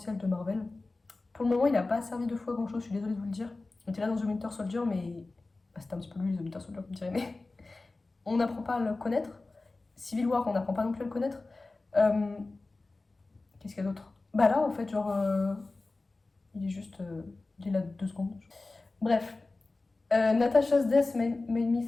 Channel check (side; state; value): right; quieter; 3.3 dB